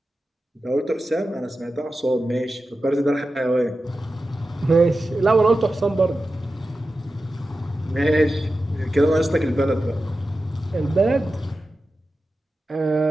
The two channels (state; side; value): normal; both; correlation 0.93